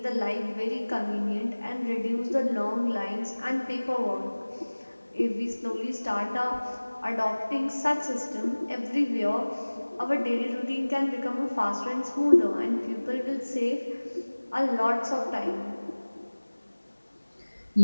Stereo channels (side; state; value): both; inverted; correlation -1.00